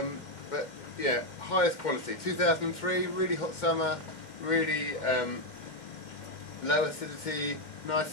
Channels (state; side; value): late; right; 2.1 ms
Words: But yeah, highest quality. 2003, really hot summer, really low acidity, nice